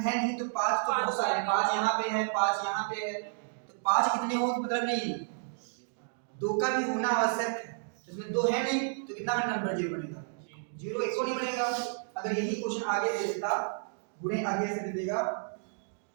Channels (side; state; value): left; silent; digital silence